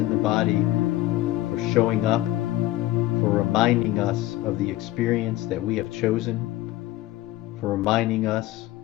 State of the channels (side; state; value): right; quieter; 16.0 dB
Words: the body for showing up, for reminding us of the experience that we have chosen, for reminding us